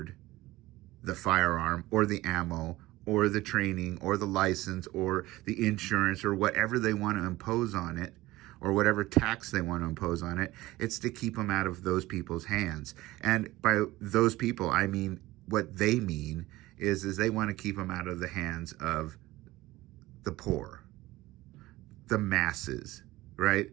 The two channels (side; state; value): left; quieter; 18.2 dB